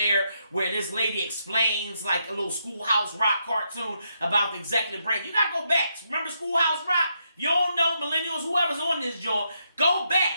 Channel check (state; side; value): inverted; both; correlation -0.79